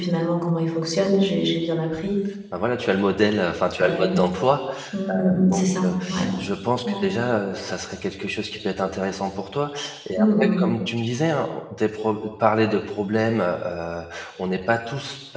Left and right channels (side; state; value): both; identical; correlation 1.00